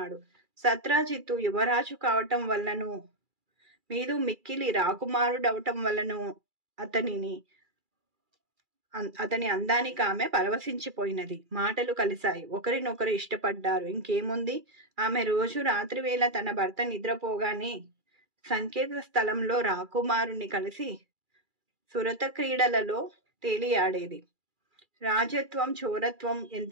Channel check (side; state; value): left; late; 2.4 ms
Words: సత్రాజిత్తు యువరాజు కావటం వల్లను, మీదు మిక్కిలి రాకుమారుడవటం వల్లను అతని అందానికి ఆమె పరవశించిపోయినది. మాటలు కలిశాయి. ఒకరినొకరు ఇష్టపడ్డారు. ఇంకేముంది, ఆమె రోజు రాత్రివేళ తన భర్త నిద్రపోగానే సంకేత స్థలంలో రాకుమారుని కలిసి సురత క్రీడలలో తేలియాడేది. రాజత్వం చోరత్వం